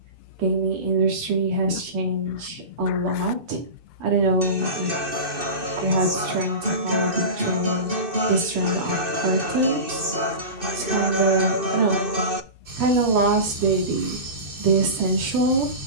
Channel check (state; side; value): late; left; 2.6 ms